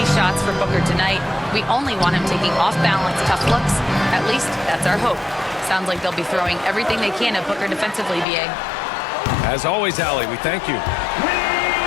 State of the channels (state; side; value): drops out; right; at 8.2 s